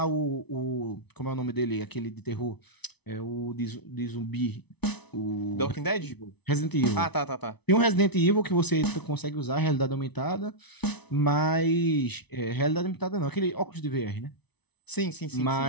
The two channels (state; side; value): late; right; 0.99 ms